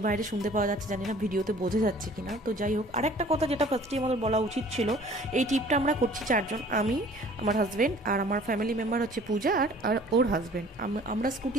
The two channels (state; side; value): normal; both; correlation 0.51